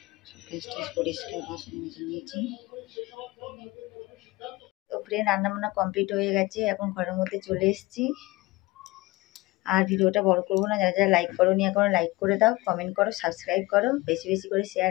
গ্যাস পরিষ্কার, বাসন মেজে নিয়েছি। তো ফ্রেন্ড, রান্নাবান্না কমপ্লিট হয়ে গেছে, এখন ঘরের মধ্যে চলে এসেছি। আর ভিডিওটা বড় করবো না, যারা যারা লাইক করো নি এখনো লাইক করে দাও, কমেন্ট করো, সাবস্ক্রাইব করো, বেশি বেশি করে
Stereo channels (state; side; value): quieter; right; 21.4 dB